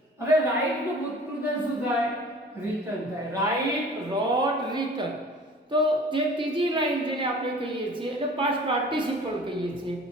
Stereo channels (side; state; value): both; normal; correlation 0.46